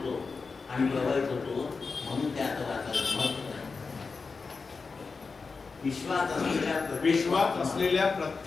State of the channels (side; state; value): right; quieter; 4.6 dB